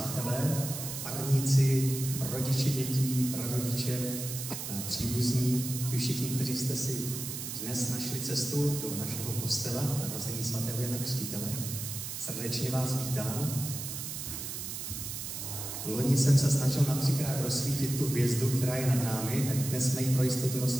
farníci, rodiče dětí, prarodiče, příbuzní, vy všichni, kteří jste si dnes našli cestu do našeho kostela narození svatého Jana Křtitele. Srdečně vás vítám. Loni jsem se snažil na 3krát rozsvítit tu hvězdu, která je nad námi, tak dnes jsme ji pro jistotu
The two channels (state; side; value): noise; right; hiss, 6 dB below the sound